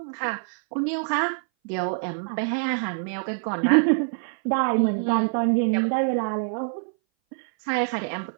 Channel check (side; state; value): left; silent; 59 dB below the other